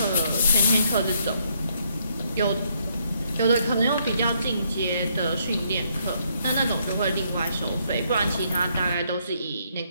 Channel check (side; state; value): both; inverted; correlation -0.72